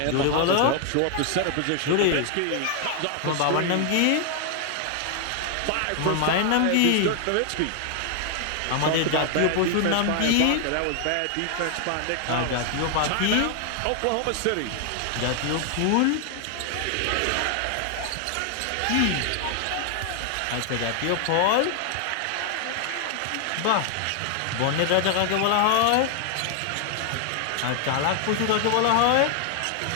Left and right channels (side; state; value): both; different; correlation 0.00